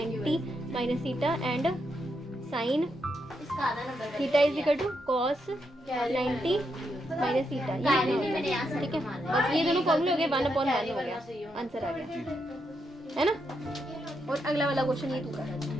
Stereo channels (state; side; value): normal; both; correlation 0.81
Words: minus theta and sine theta is equal to cos 90 minus theta. ठीक है, बस ये दोनों फॉर्मूले हो गए, 1/1 हो गया, आंसर आ गया, है ना। और अगला वाला क्वेश्चन ये तू कर,